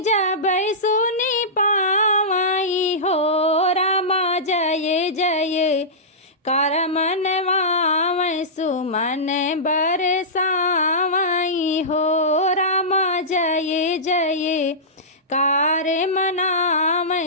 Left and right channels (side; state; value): both; normal; correlation -0.17